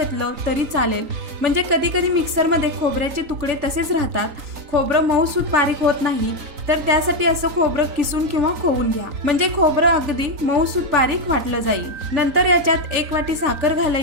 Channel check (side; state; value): left; late; 3.9 ms